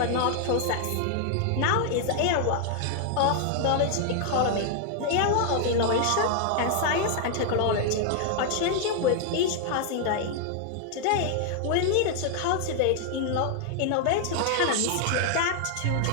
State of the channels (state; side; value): different; both; correlation 0.00